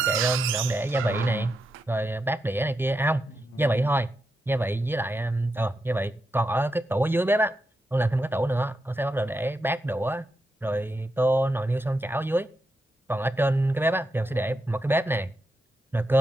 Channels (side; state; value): both; normal; correlation 0.86